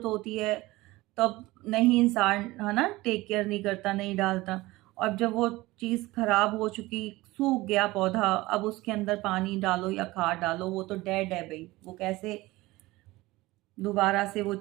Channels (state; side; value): quieter; left; 19.7 dB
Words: होती है तब नहीं इंसान है ना टेक केयर नहीं करता, नहीं डालता। और जब वो चीज़ खराब हो चुकी, सूख गया पौधा, अब उसके अंदर पानी डालो या खाद डालो, वो तो डेड है भाई, वो कैसे दोबारा से वो